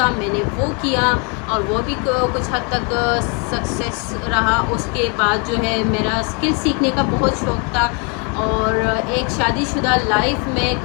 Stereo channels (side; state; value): right; quieter; 34.7 dB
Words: میں نے وہ کیا اور وہ بھی کچھ حد تک سکسیس رہا. اس کے بعد جو ہے میرا اسکل سیکھنے کا بہت شوق تھا, اور ایک شادی شدہ لائف میں,